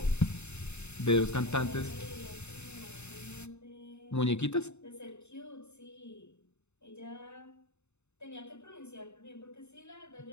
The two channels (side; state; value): right; late; 0.82 ms